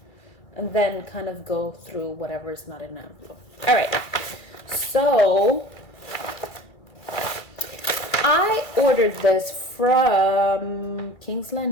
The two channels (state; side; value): late; right; 2.3 ms